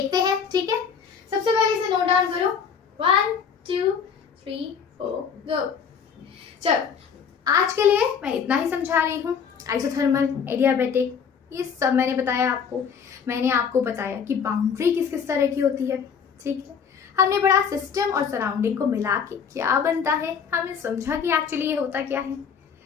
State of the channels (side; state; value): right; quieter; 6.8 dB